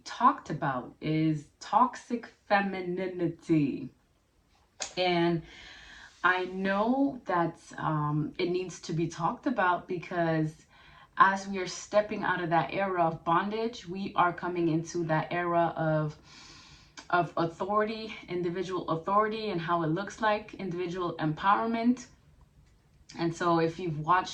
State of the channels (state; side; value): identical; both; correlation 1.00